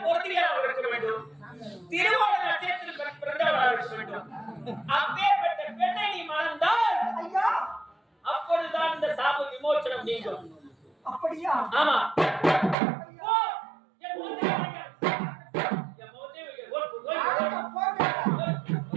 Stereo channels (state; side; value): drops out; left; at 12.8 s